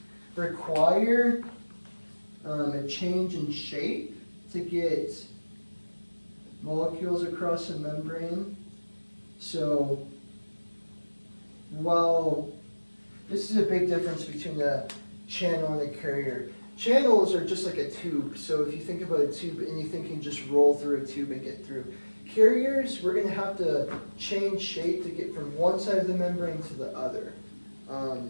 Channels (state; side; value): inverted; both; correlation -1.00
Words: require a change in shape to get molecules across a membrane. So, while this is a big difference between a channel and a carrier. Channels are just like a tube. So if you think about a tube, anything can just roll through a tube and get through. Carriers, we're going to have to change shape to get from one side of the membrane to the other.